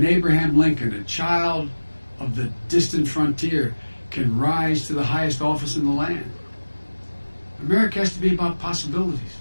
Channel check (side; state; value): both; inverted; correlation -1.00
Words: Abraham Lincoln, a child of the distant frontier, can rise to the highest office in the land. America has to be about possibilities.